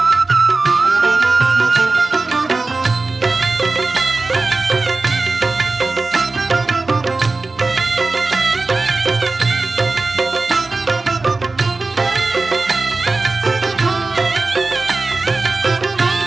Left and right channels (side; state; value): left; quieter; 3.6 dB